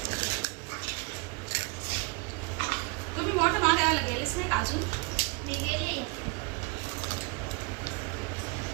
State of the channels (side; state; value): left; quieter; 30.2 dB